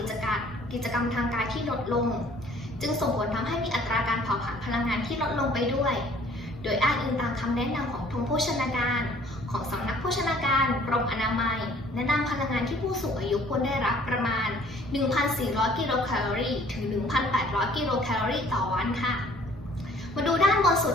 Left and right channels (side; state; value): both; normal; correlation 0.56